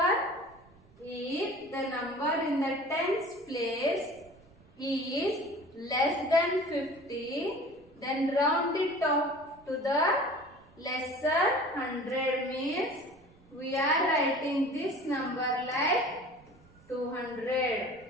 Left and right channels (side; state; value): right; noise; rumble, 27 dB below the sound